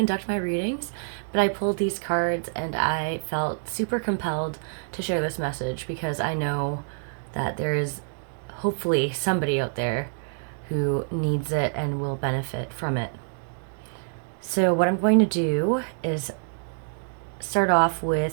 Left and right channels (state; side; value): silent; left; 61 dB below the other